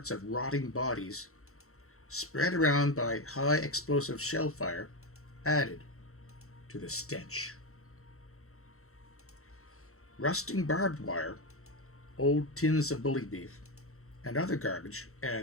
of rotting bodies, spread around by high explosive shell fire, added to the stench. Rusting barbed wire, old tins of bully beef, and other garbage,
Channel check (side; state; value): right; late; 0.63 ms